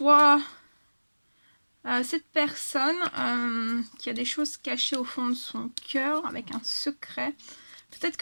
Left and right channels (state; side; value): inverted; both; correlation -1.00